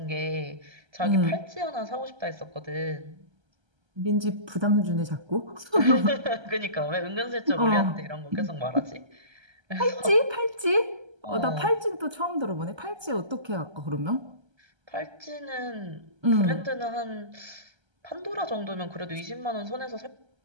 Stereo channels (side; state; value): left; late; 1.3 ms